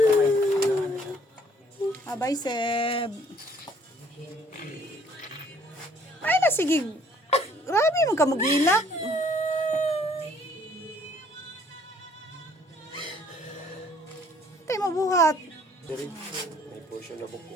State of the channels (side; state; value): both; normal; correlation 0.60